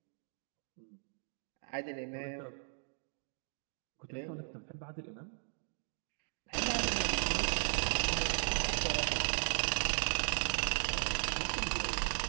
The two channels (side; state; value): left; silent; digital silence